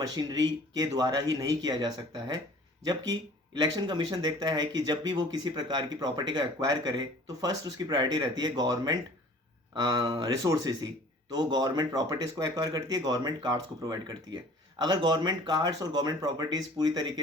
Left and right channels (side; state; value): both; normal; correlation 0.49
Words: के द्वारा ही नहीं किया जा सकता है। जबकि इलेक्शन कमीशन देखता है कि जब भी वो किसी प्रकार की प्रॉपर्टी का एक्वायर करे तो फर्स्ट उसकी प्रायोरिटी रहती है गवर्नमेंट रिसोर्सेज ही। तो वो गवर्नमेंट प्रॉपर्टीज़ को एक्वायर करती है, गवर्नमेंट कार्ड्स को प्रोवाइड करती है। अगर गवर्नमेंट कार्ड्स और गवर्नमेंट प्रॉपर्टीज़ पूरी